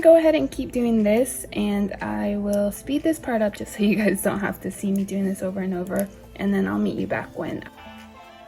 ahead and keep doing this, and I will speed this part up just so you guys don't have to see me doing this over and over, and then I'll meet you back when.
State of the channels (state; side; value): identical; both; correlation 1.00